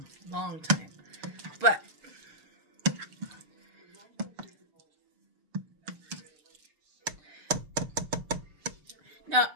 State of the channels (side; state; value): left; late; 6.5 ms